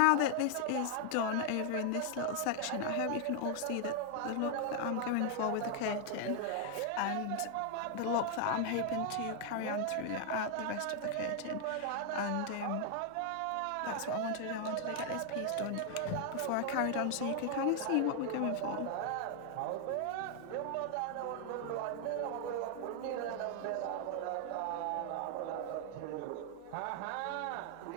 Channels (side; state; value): both; different; correlation 0.00